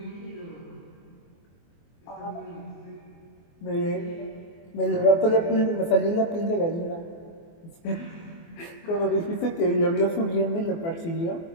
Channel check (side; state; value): right; late; 24 ms